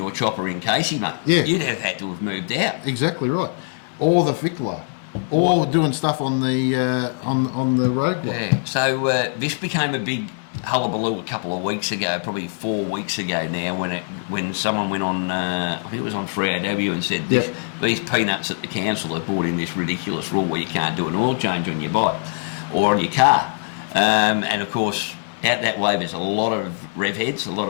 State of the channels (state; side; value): silent; right; 58 dB below the other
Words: chopper in Casey, mate. Yeah. You'd have had to have moved out. Exactly right. Or the Fickler. Or doing stuff on the road block. Yeah. So this became a big hullabaloo a couple of weeks ago, probably 4 weeks ago now, when someone went on, I think it was on 3AW, and said these peanuts at the council have brought in this ridiculous rule where you can't do an oil change on your bike or on your car. And of course, out that way there's a lot of rev heads, a lot